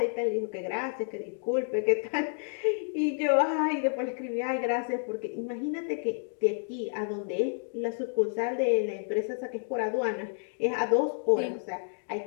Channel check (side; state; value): right; silent; digital silence